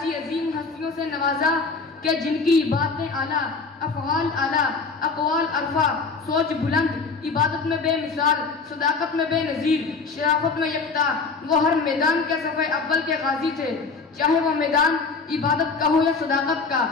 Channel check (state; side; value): quieter; right; 4.4 dB